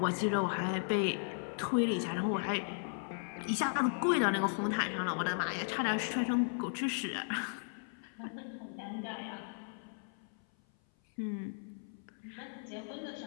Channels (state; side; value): silent; right; 54 dB below the other